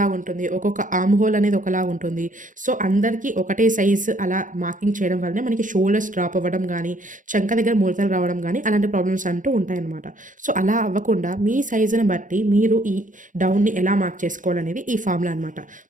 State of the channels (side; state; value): left; late; 0.38 ms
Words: ఉంటుంది, ఒక్కొక్క ఆర్మ్ హోల్ అనేది ఒకలాగా ఉంటుంది. సో అందరికీ ఒకటే సైజు అలా మార్కింగ్ చేయడం వల్లనే మనకి షోల్డర్స్ డ్రాప్ అవ్వడం కానీ, చంక దగ్గర ముడతలు రావడం కానీ అలాంటి ప్రాబ్లమ్స్ అంటూ ఉంటాయన్నమాట. సో అలా అవ్వకుండా మీ సైజుని బట్టి మీరు ఈ డౌన్ని ఎలా మార్క్ చేసుకోవాలనేది ఈ ఫార్ములా అనమాట.